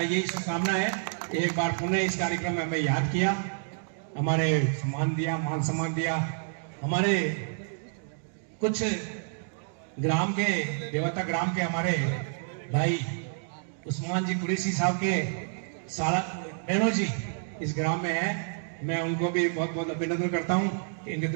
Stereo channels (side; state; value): left; silent; digital silence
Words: यही शुभकामना है। एक बार पुनः इस कार्यक्रम में मैं याद किया, हमारे सम्मान दिया, मान सम्मान दिया। हमारे कुछ ग्राम के देवता ग्राम के हमारे भाई उस्मान जी कुरैशी साहब के सारा बहनों जी इस ग्राम में है। मैं उनको भी बहुत बहुत अभिनंदन करता हूँ। इनके